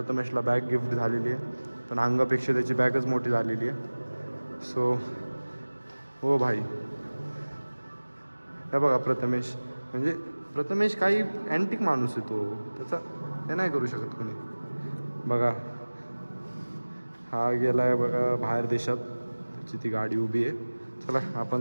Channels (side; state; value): both; inverted; correlation -1.00